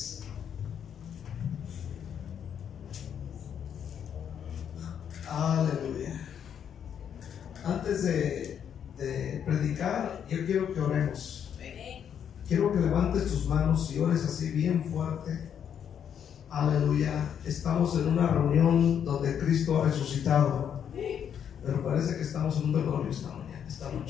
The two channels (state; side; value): quieter; right; 8.5 dB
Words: Aleluya. Antes de predicar, yo quiero que oremos. Quiero que levantes tus manos y ores así bien fuerte. Aleluya. Estamos en una reunión donde Cristo ha resucitado, pero parece que estamos en un velorio esta